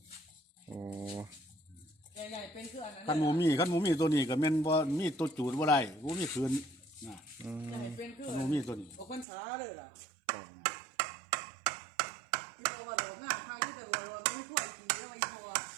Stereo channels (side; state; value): left; drops out; at 9.2 s